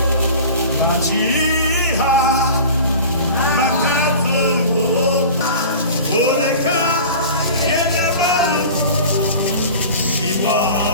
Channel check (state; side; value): inverted; both; correlation -0.38